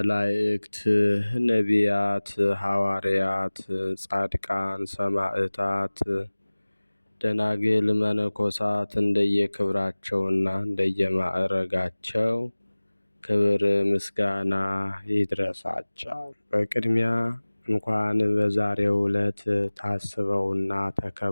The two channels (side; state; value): both; inverted; correlation -1.00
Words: ነቢያት፣ ሐዋርያት፣ ጻድቃን፣ ሰማዕታት፣ ደናግል፣ መነኮሳት እንደየክብራቸውና እንደየማዕረጋቸው ክብር ምስጋና ይድረሳቸው። በቅድሚያ እንኳን በዛሬው ዕለት ታስበውና